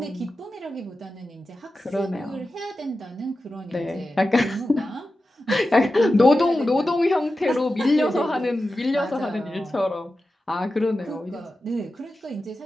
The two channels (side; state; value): both; normal; correlation 0.93